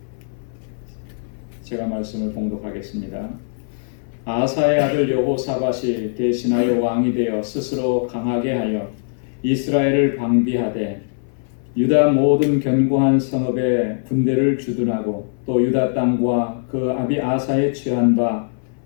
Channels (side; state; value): right; silent; 59 dB below the other